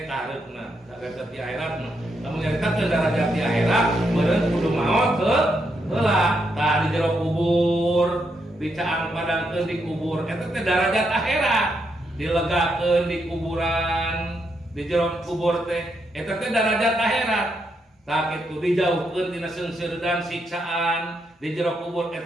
kahareupna derajat di akhiratna lamun diangkatkeun derajat di akhirat meureun kudu maot heula tah di jero kubur dicaang padangkeun di kubur eta teh derajat akhirat dilegakeun di kuburan di jero kubur teh eta teh derajat akhirat tah kitu dijauhkeun tina seungseureun dan siksaan di jero kubur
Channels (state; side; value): normal; both; correlation 0.80